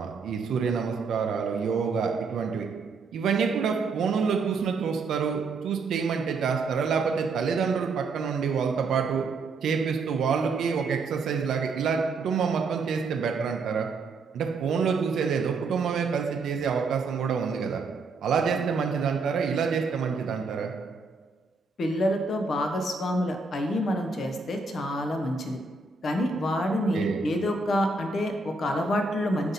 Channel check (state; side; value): quieter; left; 3.9 dB